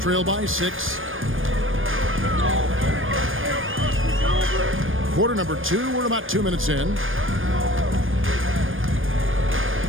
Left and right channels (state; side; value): late; left; 0.59 ms